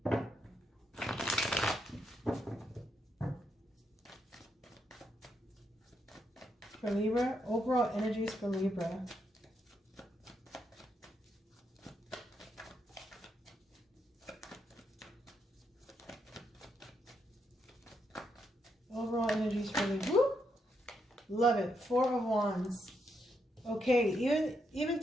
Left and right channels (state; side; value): normal; both; correlation 0.79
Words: For Libra, overall energies for Libra. Overall energies for Libra. Woo! Love it. Four of Wands. Okay, even